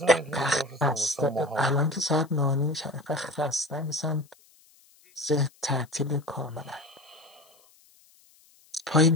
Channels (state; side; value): noise; left; hiss, 30 dB below the sound